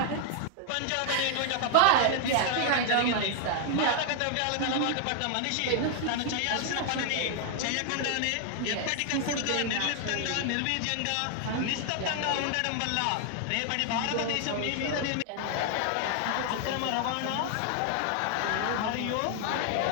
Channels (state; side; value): different; both; correlation 0.00